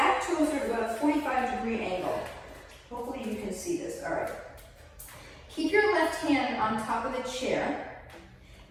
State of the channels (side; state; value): both; identical; correlation 1.00